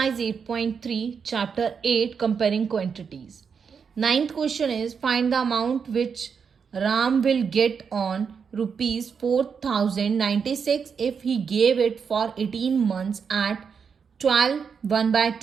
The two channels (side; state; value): left; quieter; 6.3 dB